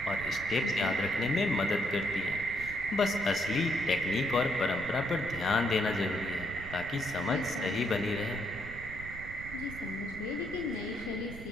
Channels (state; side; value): noise; right; rumble, 12 dB below the sound